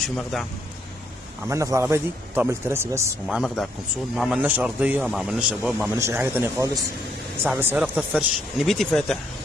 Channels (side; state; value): both; normal; correlation 0.72